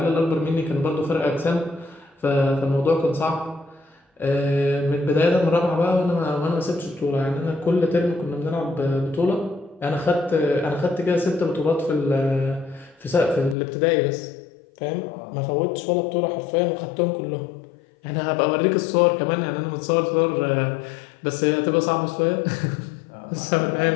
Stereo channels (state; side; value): drops out; right; at 13.6 s